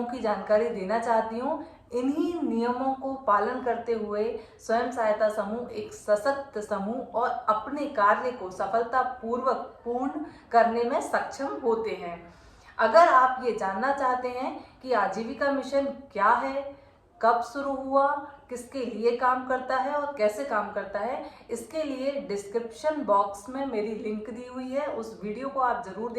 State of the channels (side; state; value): both; identical; correlation 1.00